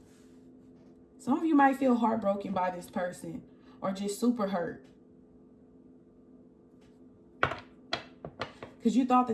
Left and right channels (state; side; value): identical; both; correlation 1.00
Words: Some of you might feel heartbroken by this person, or just super hurt, because you thought